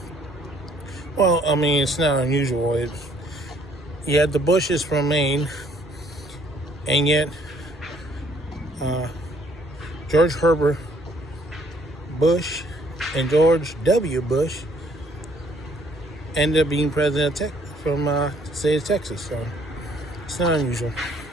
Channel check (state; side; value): normal; both; correlation 0.63